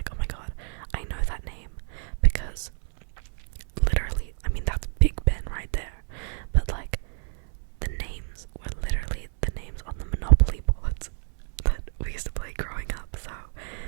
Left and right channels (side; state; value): left; silent; 59 dB below the other